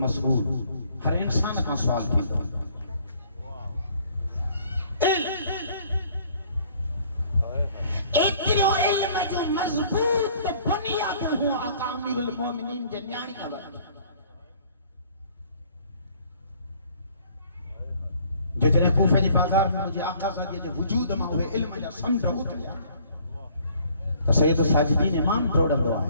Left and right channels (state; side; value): inverted; both; correlation -0.58